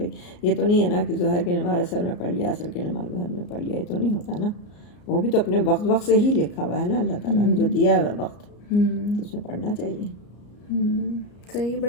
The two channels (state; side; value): late; right; 34 ms